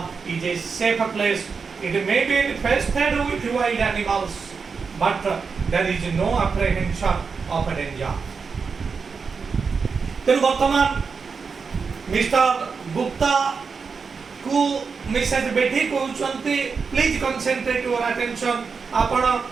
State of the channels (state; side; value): quieter; left; 5.3 dB